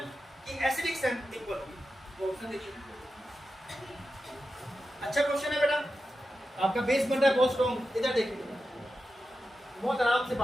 की एसिडिक स्ट्रेंथ इक्वल होगी? ऑप्शन देखिए। अच्छा क्वेश्चन है बेटा, आपका बेस बन रहा है बहुत स्ट्रॉन्ग। इधर देखिए, बहुत आराम से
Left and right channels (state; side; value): normal; both; correlation 0.91